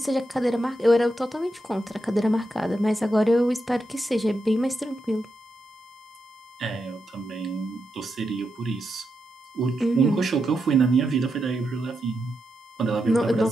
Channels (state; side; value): normal; both; correlation 0.85